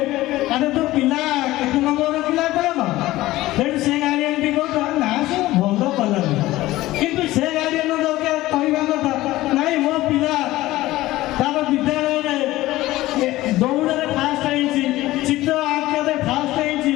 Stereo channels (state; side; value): quieter; right; 17.1 dB